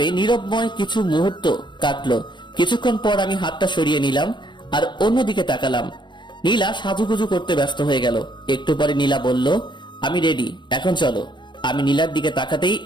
নীরবময় কিছু মুহূর্ত কাটলো। কিছুক্ষণ পর আমি হাতটা সরিয়ে নিলাম আর অন্যদিকে তাকালাম। নীলা সাজুগুজু করতে ব্যস্ত হয়ে গেল। একটু পরে নীলা বলল, আমি রেডি, এখন চলো। আমি নীলার দিকে তাকাতেই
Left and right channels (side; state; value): right; late; 0.22 ms